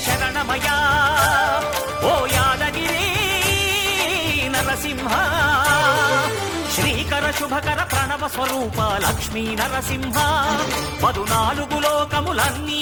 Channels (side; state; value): both; identical; correlation 1.00